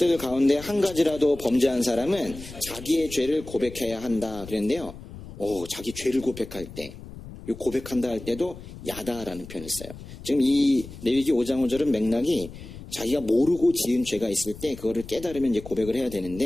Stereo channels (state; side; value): noise; left; rumble, 14 dB below the sound